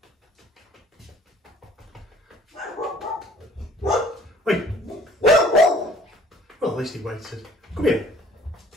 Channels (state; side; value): normal; both; correlation 0.56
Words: Wait! Well, at least he waited. Come here.